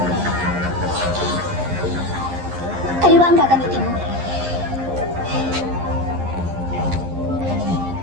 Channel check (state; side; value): late; left; 11 ms